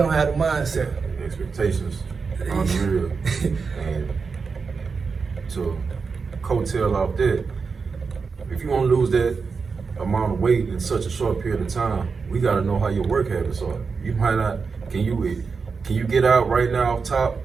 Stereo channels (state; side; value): quieter; left; 5.0 dB